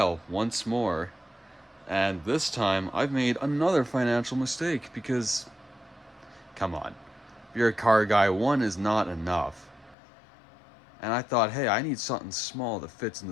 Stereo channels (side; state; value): right; drops out; at 10.0 s